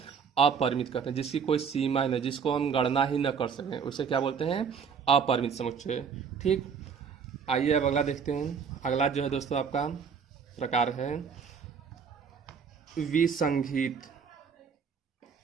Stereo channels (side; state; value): left; quieter; 6.4 dB